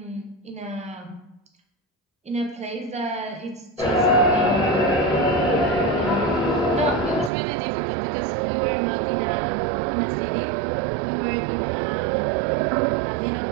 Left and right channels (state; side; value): drops out; left; at 7.3 s